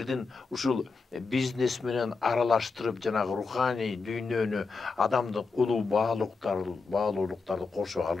ушул бизнес менен аралаштырып жанагы руханий дүйнөнү, адамдын улуу баалуулуктарды кошо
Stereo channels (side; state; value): right; quieter; 4.4 dB